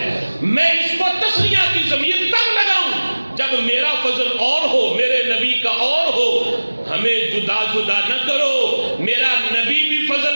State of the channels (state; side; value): inverted; both; correlation -1.00